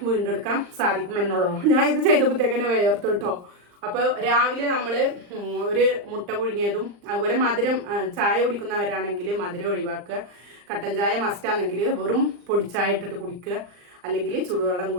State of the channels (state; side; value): late; left; 39 ms